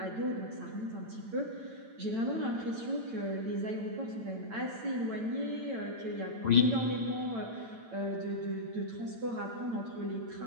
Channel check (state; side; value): late; left; 9.0 ms